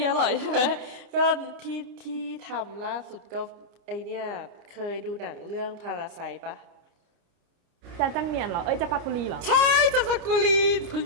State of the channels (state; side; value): late; left; 29 ms